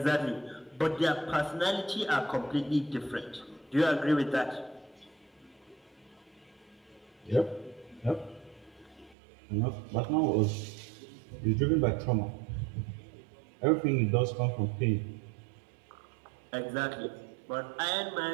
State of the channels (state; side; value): drops out; left; at 9.2 s